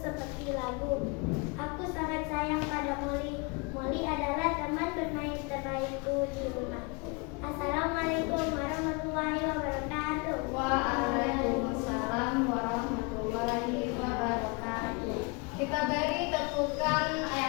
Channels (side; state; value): right; quieter; 30.2 dB